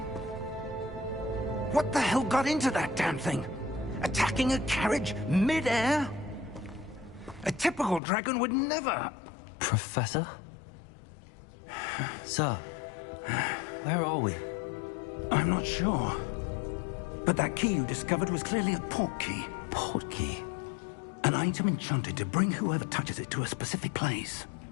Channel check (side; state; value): right; drops out; at 8.0 s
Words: What the hell got into that damn thing? Attacking a carriage mid-air? A typical dragon would never... Professor? Sir, where are we? I'm not sure. But that key you discovered was clearly a port key. Port key? An item enchanted to bring whoever touches it to a specific place.